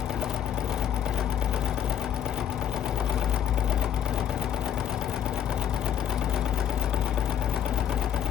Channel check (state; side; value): quieter; right; 9.5 dB